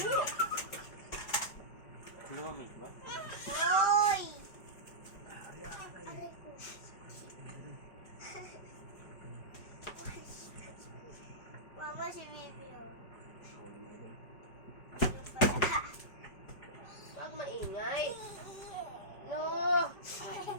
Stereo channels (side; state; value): right; late; 5.1 ms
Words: Lumamig ba? Hoy! Aray ko. Mama, si Bibi, oh. Sorry, mga idol. Yung pala. Wag maingay. No.